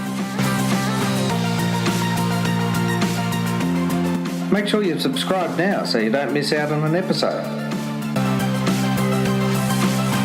Make sure you've subscribed now so you don't miss out on an episode.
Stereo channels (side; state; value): both; identical; correlation 1.00